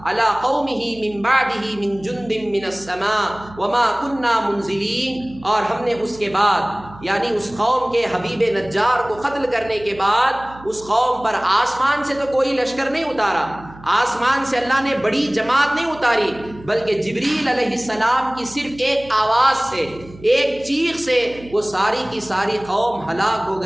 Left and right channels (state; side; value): noise; right; hum, 19 dB below the sound